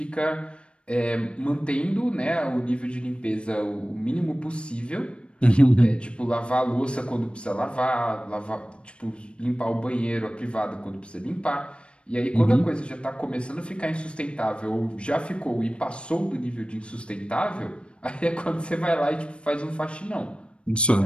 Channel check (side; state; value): right; late; 0.058 ms